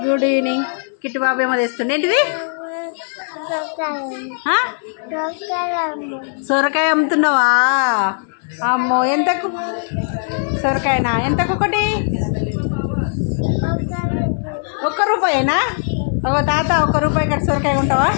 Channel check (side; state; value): right; silent; 64 dB below the other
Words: good evening. Kittu Babu ఏమో తెస్తుండే ఏంటిది? సొరకాయ అమ్ముతున్నావా? అమ్మో, ఎంతకు సొరకాయనా? ఎంతకు ఒకటి? ₹1 ఒక తాత ₹1 ఇక్కడ సొరకాయ ఉంటావా?